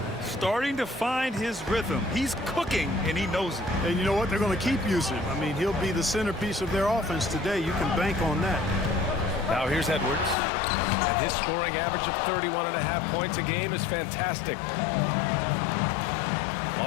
Starting to find his rhythm. He's cooking, and he knows it. And you know what? They're going to keep using him. I mean, he'll be the centerpiece of their offense today. You can bank on that. Now here's Edwards. And his scoring average of 31.5 points a game is fantastic.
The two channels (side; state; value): right; drops out; at 10.4 s